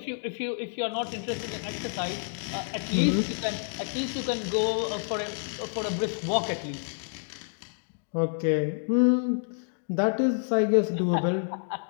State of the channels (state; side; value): silent; right; digital silence